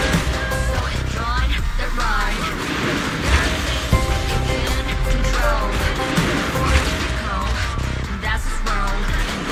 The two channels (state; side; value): identical; both; correlation 1.00